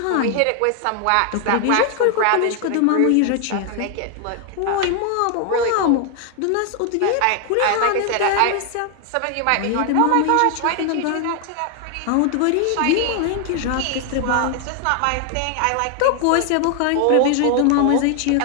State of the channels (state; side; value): different; both; correlation 0.00